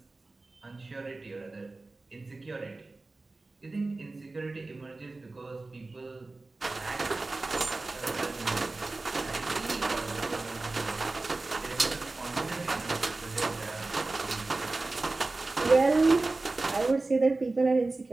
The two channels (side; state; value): left; quieter; 3.3 dB